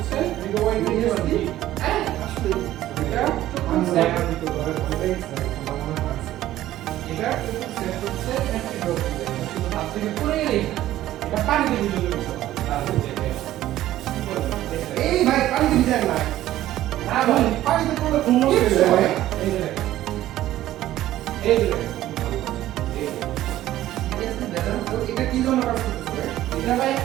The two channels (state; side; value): quieter; left; 14.1 dB